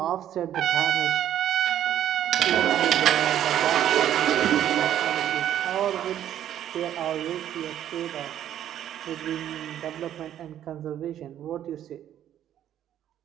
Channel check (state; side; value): quieter; left; 11.0 dB